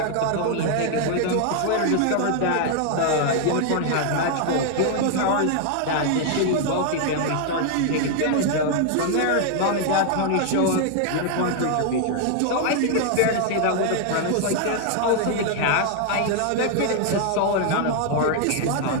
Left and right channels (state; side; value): different; both; correlation 0.00